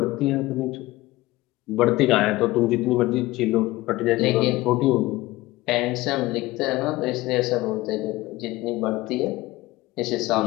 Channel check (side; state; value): right; quieter; 18.8 dB